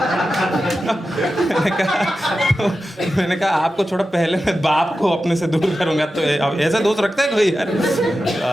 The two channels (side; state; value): both; normal; correlation 0.92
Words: मैंने कहा आपको छोड़ो, पहले मैं बाप को अपने से दूर करूंगा. तो ऐसा दोस्त रखता है कोई यार?